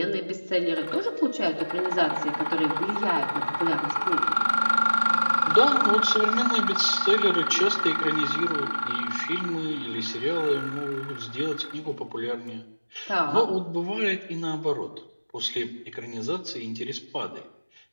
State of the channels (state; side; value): inverted; both; correlation -1.00